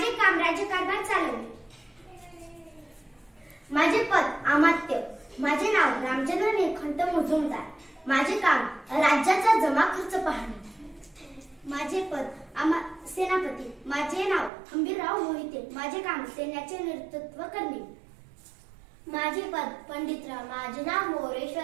काम राज्यकारभार चालवणे। माझे पद अमात्य, माझे नाव रामचंद्र निळकंठ मुजुमदार, माझे काम राज्याचा जमा खर्च पाहणे। माझे पद सेनापती, माझे नाव हंबीरराव मोहिते, माझे काम सैन्याचे नेतृत्व करणे। माझे पद पंडितराव, माझे नाव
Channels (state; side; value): drops out; left; at 14.5 s